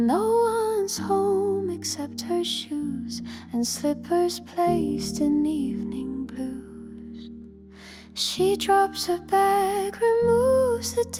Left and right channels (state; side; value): identical; both; correlation 1.00